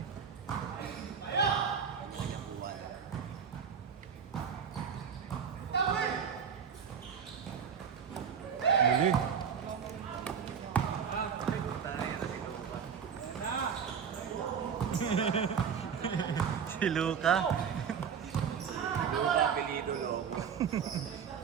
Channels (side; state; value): left; quieter; 7.1 dB